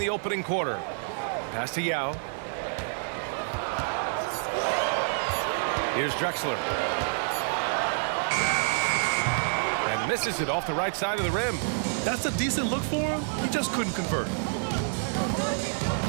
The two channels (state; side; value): silent; left; digital silence